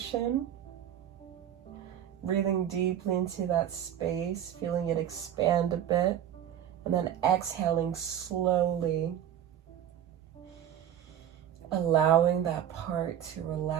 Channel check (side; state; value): left; quieter; 10.3 dB